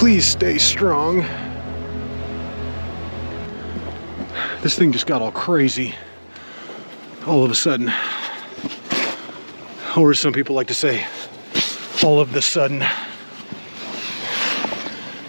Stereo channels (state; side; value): inverted; both; correlation -1.00